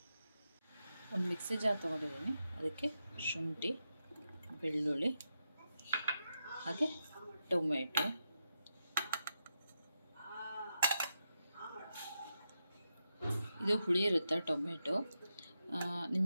ಒಂದು ಮಿಕ್ಸಿ ಜಾರ್ ತೊಗೊಂಡಿದ್ದೀನಿ. ಅದಕ್ಕೆ ಶುಂಠಿ, ಬೆಳ್ಳುಳ್ಳಿ, ಹಾಗೆ ಟೊಮೆಟೊ, ಇದು ಹುಳಿ ಇರುತ್ತೆ ಟೊಮೆಟೊ.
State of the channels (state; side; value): inverted; both; correlation -0.86